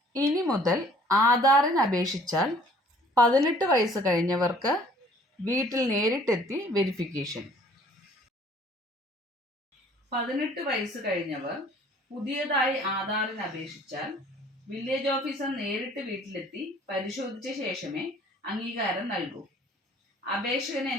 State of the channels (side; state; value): both; normal; correlation 0.55